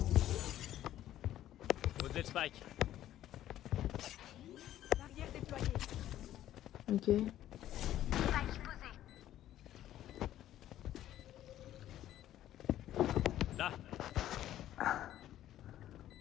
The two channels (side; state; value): right; quieter; 12.7 dB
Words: Au-delà de Spike. Barrière déployée. Ok. Là.